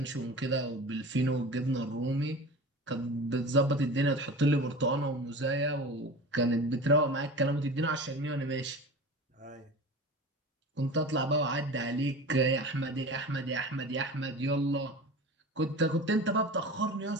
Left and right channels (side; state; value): both; normal; correlation 0.34